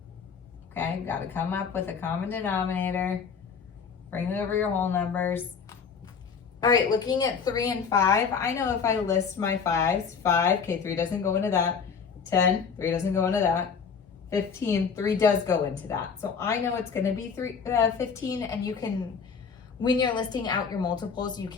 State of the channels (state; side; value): quieter; right; 6.0 dB